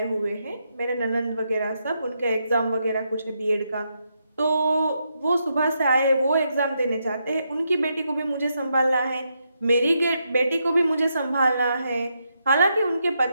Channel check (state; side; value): inverted; both; correlation -0.81